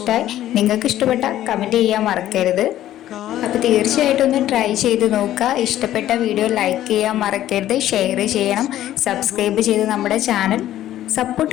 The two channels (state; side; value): quieter; right; 13.0 dB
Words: നിങ്ങൾക്ക് ഇഷ്ടപ്പെട്ട കമൻറ്റ് ചെയ്യാൻ മറക്കരുത്. അപ്പോൾ തീർച്ചയായിട്ടും ഒന്ന് ട്രൈ ചെയ്ത് നോക്കുക. ഇഷ്ടപ്പെട്ട വീഡിയോ ലൈക്ക് ചെയ്യാൻ മറക്കരുത്, ഷെയർ ചെയ്യണം, സബ്സ്ക്രൈബ് ചെയ്ത് നമ്മുടെ ചാനൽ